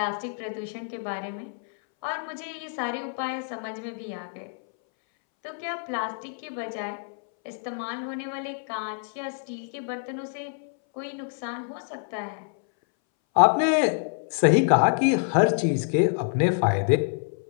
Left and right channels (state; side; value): silent; right; 60 dB below the other